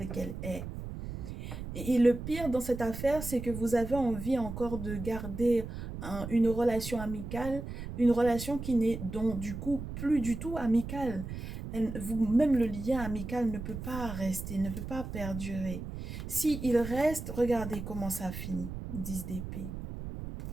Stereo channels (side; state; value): right; noise; rumble, 8 dB below the sound